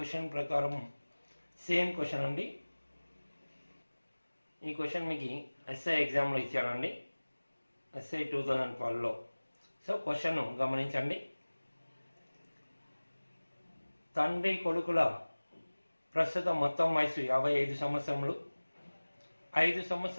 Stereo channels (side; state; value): both; inverted; correlation -1.00